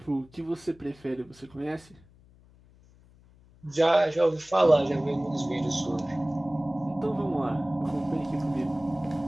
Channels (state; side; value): noise; left; hum, 27 dB below the sound